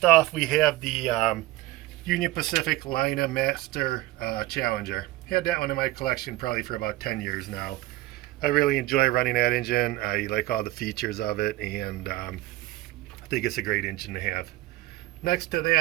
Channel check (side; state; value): left; quieter; 17.6 dB